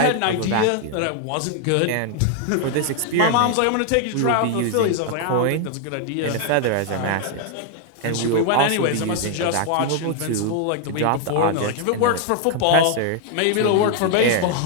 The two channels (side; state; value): both; different; correlation 0.00